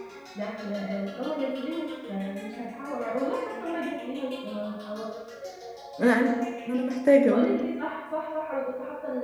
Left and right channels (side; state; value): both; identical; correlation 1.00